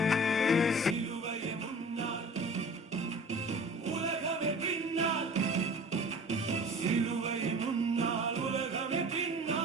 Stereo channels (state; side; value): normal; both; correlation 0.42